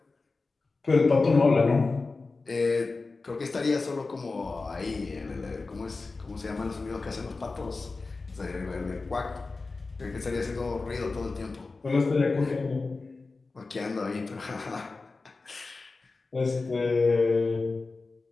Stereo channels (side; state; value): right; quieter; 3.8 dB